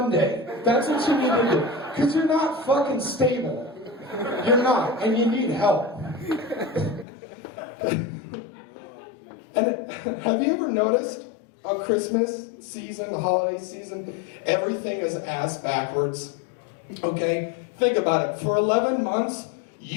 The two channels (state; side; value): drops out; right; at 7.1 s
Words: That's what you need to do. Because you're not fucking stable. You're not, and you need help. And have you ever noticed on Christmas season, the holiday season, everything is ass backwards? Okay? Think about it. For 11 months,